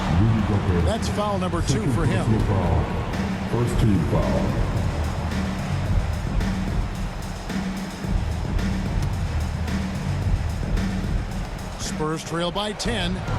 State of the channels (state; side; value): identical; both; correlation 1.00